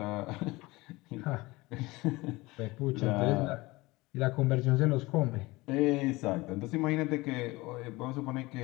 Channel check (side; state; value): right; quieter; 21.6 dB